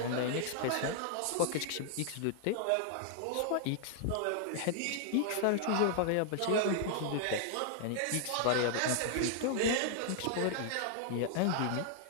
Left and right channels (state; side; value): different; both; correlation -0.01